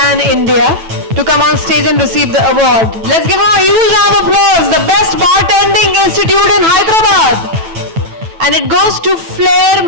India, to come on stage and receive the award. Let's give him a huge round of applause. The best bartending institute in Hyderabad. And it goes to Flair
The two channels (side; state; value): left; late; 9.1 ms